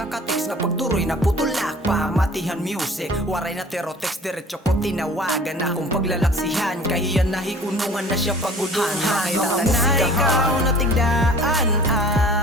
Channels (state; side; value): normal; both; correlation 0.47